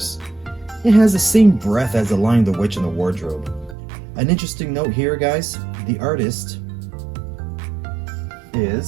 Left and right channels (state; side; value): drops out; left; at 3.8 s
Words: It has the same breath as The Lion, the Witch, and the Wardrobe. An interesting note here, guys, the artist